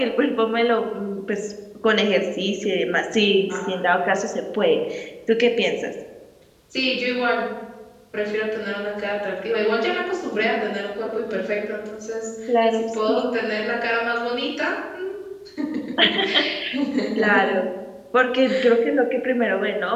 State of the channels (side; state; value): both; identical; correlation 1.00